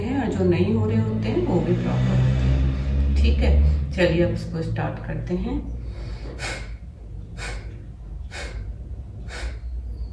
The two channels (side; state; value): both; identical; correlation 1.00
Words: और जो नहीं हो रहे होते हैं वो भी प्रॉपर होते हैं। ठीक है, चलिए अब इसको स्टार्ट करते हैं।